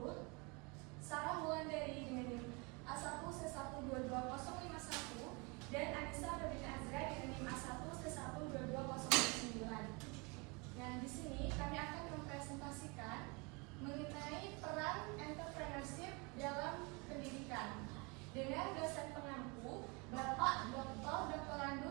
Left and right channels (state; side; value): quieter; left; 29.3 dB